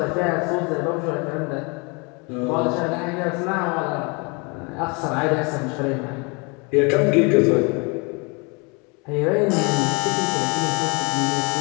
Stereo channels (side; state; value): right; quieter; 30.7 dB